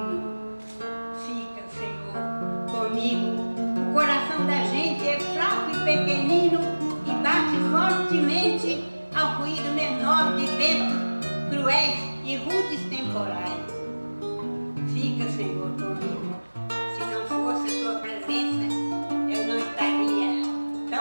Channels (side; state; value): both; inverted; correlation -1.00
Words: Fica, Senhor, comigo. O coração da gente é fraco e pequenino e bate fortemente ao ruído menor de ventos cruéis e rudes temporais. Fica, Senhor, comigo. Se não fosse tua presença, eu não estaria